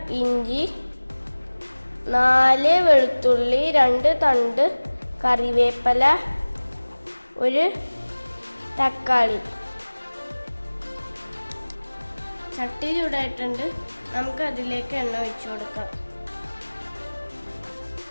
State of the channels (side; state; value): both; inverted; correlation -1.00